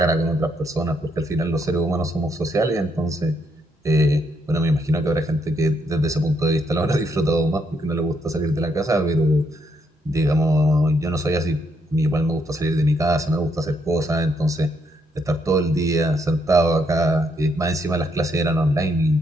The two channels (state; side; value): normal; both; correlation 0.75